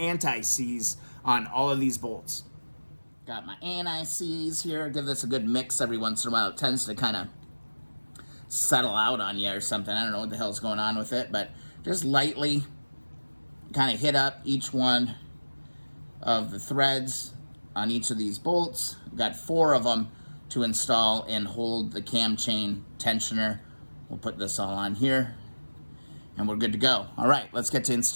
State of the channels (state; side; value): inverted; both; correlation -1.00